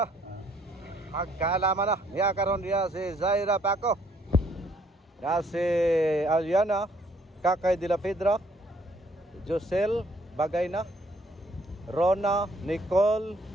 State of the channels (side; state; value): both; normal; correlation 0.65